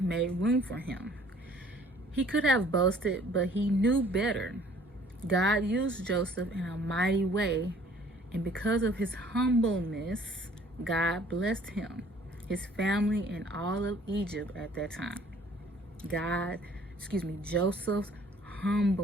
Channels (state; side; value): normal; both; correlation 0.56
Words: made room for him. He could have boasted, but he knew better. God used Joseph in a mighty way, and because of his humbleness, God blessed him, his family, and all of Egypt at that time. Joseph's